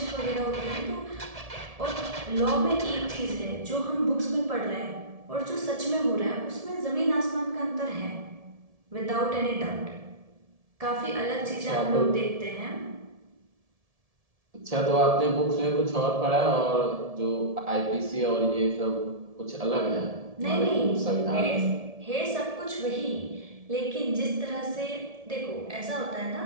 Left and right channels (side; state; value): left; late; 1.7 ms